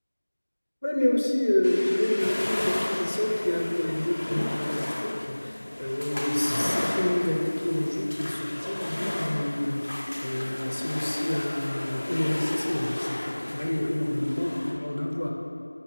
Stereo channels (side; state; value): both; inverted; correlation -1.00